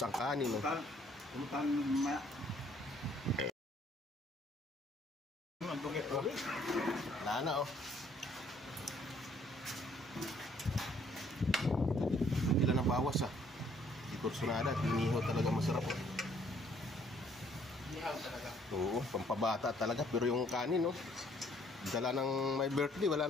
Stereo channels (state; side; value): normal; both; correlation 0.63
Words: ang kanin, no? Wala na, oh. Ilan ang bawas, ah. Di kursunada at inihaw talaga masarap, oh. Inihaw talaga? Oo, pampabata talaga. Pero yung kanin, oh. Dala ng may birthday, wala